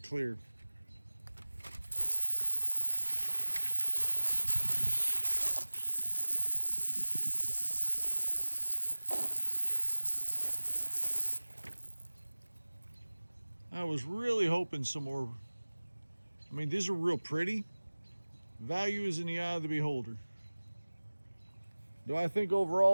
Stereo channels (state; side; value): inverted; both; correlation -1.00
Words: clear. I was really hoping some more. I mean, these are real pretty. Value is in the eye of the beholder. Do I think